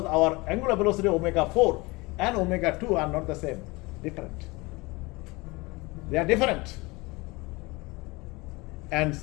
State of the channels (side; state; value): right; quieter; 24.0 dB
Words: our angular velocity omega 4 and omega 2 are not the same, different. They are different. And